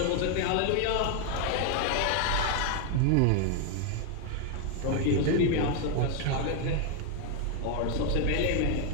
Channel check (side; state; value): both; different; correlation 0.00